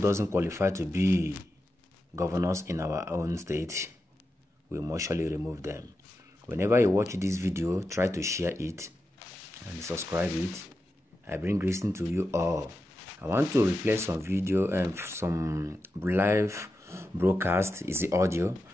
qualify to be governors in our own state, we must surely remove them. Whenever you watch this video, try to share it and subscribe it. I bring greeting to you all. I want to replay some video and some live broadcast is the audio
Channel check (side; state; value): both; normal; correlation 0.89